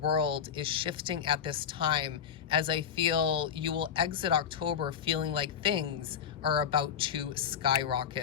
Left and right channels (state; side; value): quieter; right; 8.0 dB